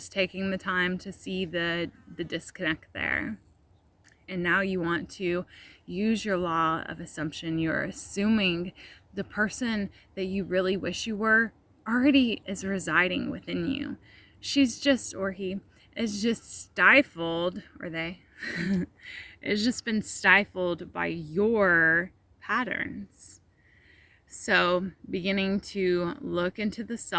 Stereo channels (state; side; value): identical; both; correlation 1.00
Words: taking the time to see the disconnect there. And now you want to use your law of assumption. You're assuming the person that you really wish you were already is residing within you. She's just, or he is just stifled, or they, it's just been stifled by your patterns. So beginning to look into the